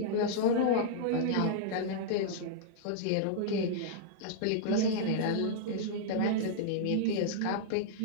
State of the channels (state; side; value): different; both; correlation -0.02